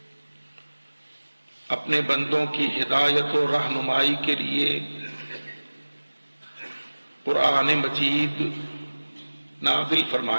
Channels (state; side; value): inverted; both; correlation -1.00